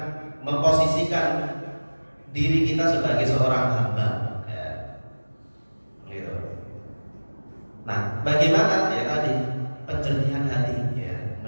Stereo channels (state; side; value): inverted; both; correlation -1.00